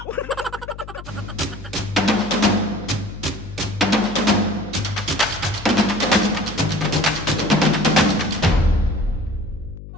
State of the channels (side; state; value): left; noise; hum, 14 dB below the sound